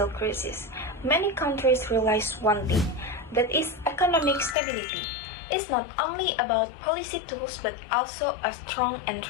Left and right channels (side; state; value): right; drops out; at 4.5 s